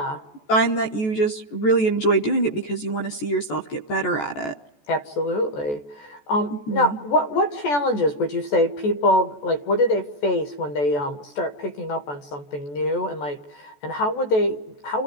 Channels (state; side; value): late; right; 14 ms